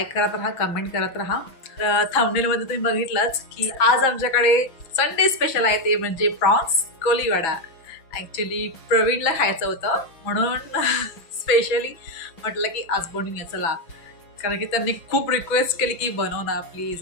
करत राहा, कमेंट करत राहा. थंबनेलमध्ये तुम्ही बघितलंच की आज आमच्याकडे संडे स्पेशल आहे, ते म्हणजे प्रॉन्स कोलीवाडा. ॲक्च्युली प्रवीणला खायचं होतं म्हणून स्पेशली म्हटलं की आज बनवूया चला, कारण की त्यांनी खूप रिक्वेस्ट केली की बनव ना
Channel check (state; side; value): late; right; 6.0 ms